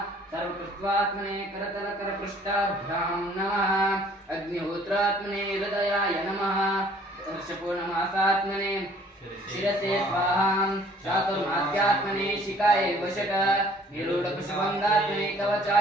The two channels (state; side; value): normal; both; correlation 0.56